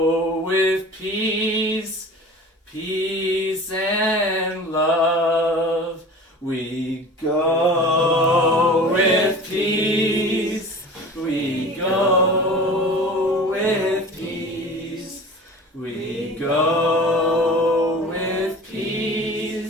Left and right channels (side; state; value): both; normal; correlation 0.39